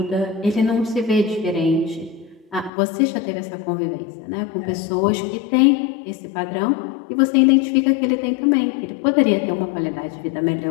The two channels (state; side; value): drops out; right; at 2.7 s